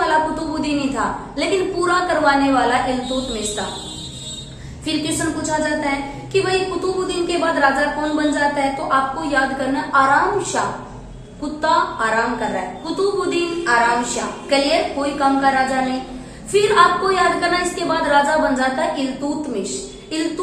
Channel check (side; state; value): both; identical; correlation 1.00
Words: कुतुबुद्दीन ही था, लेकिन पूरा करवाने वाला इल्तुतमिश था। फिर क्वेश्चन पूछा जाता है कि भाई कुतुबुद्दीन के बाद राजा कौन बन जाता है, तो आपको याद करना आराम शाह। कुत्ता आराम कर रहा है, कुतुबुद्दीन आराम शाह। क्लियर, कोई काम का राजा नहीं। फिर आपको याद करना इसके बाद राजा बन जाता है इल्तुतमिश।